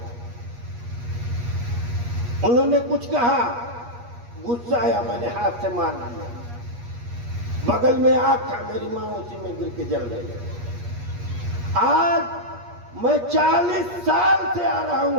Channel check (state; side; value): late; left; 8.4 ms